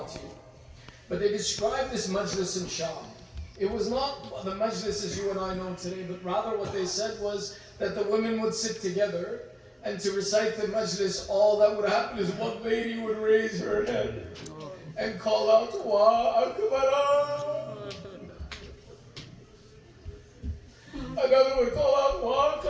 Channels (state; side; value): identical; both; correlation 1.00